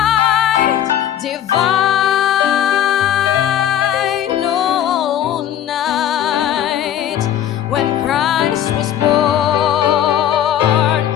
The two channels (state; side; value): quieter; right; 10.7 dB